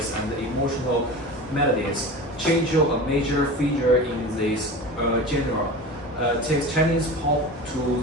and emotional melodies. Jay Chou, a major figure in this genre, takes Chinese pop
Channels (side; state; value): both; normal; correlation 0.32